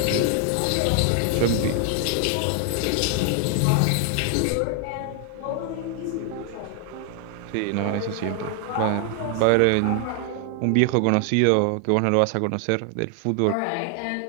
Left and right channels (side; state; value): both; different; correlation 0.00